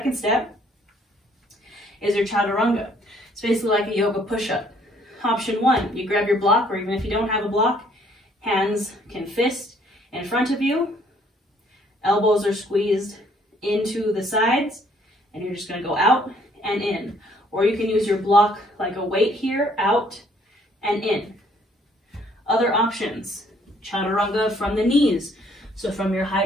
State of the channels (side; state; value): both; normal; correlation 0.63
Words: step is your chaturanga. It's basically like a yoga push-up. Option one, you grab your block, or even if you don't have a block, hands can fist in front of you. Elbows are squeezed into the sides, and you're just going to go out and in. Or you can use your block like a weight here, out and in. Other options, chaturanga from the knees. So from your high